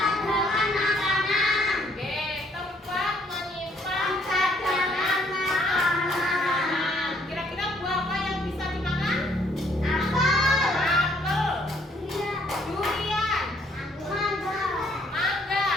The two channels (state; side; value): normal; both; correlation 0.66